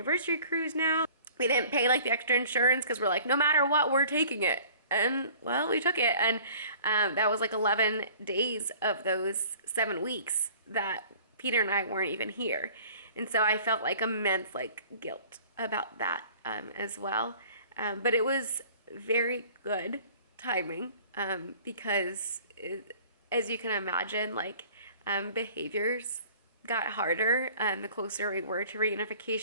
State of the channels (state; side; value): inverted; both; correlation -0.49